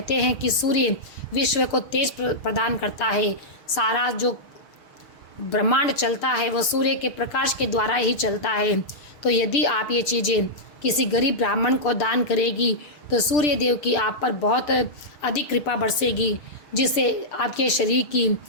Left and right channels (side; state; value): right; late; 6.7 ms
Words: हैं कि सूर्य विश्व को तेज प्रदान करता है। सारा जो ब्रह्मांड चलता है वो सूर्य के प्रकाश के द्वारा ही चलता है। तो यदि आप ये चीज़ें किसी गरीब ब्राह्मण को दान करेगी तो सूर्य देव की आप पर बहुत अधिक कृपा बरसेगी, जिससे आपके शरीर की